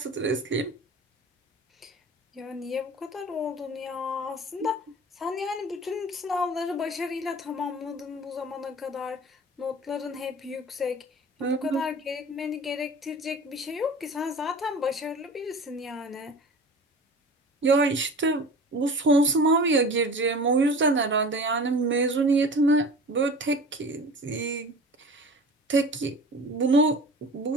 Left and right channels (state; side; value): normal; both; correlation 0.39